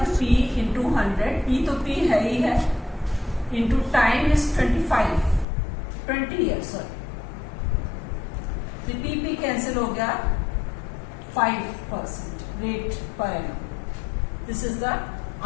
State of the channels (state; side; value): drops out; right; at 5.5 s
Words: P इंटू 100, P तो P है ही है, इंटू टाइम इज 20 ईयर्स. तो P कैंसिल हो गया, 5% rate per annum. This is the